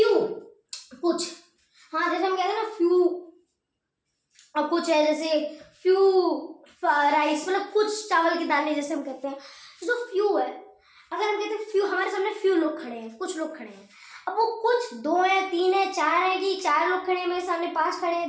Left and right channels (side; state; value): both; identical; correlation 1.00